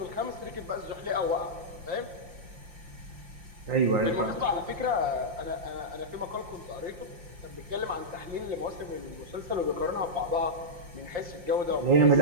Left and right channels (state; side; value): late; left; 5.7 ms